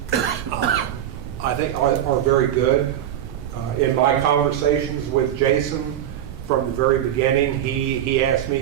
I think are very good. In my conversations with Jason, from the very beginning. He asked me,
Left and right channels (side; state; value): left; quieter; 10.9 dB